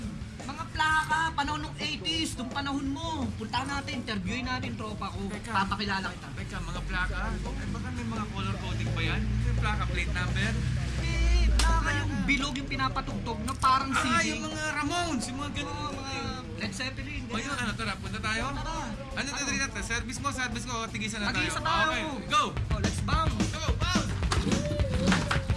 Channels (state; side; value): identical; both; correlation 1.00